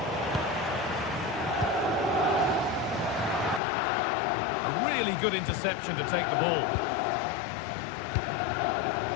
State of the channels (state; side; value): drops out; right; at 3.6 s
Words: A really good interception to take the ball.